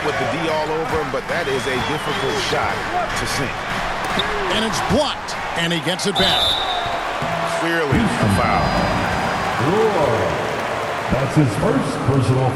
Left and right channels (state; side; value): identical; both; correlation 1.00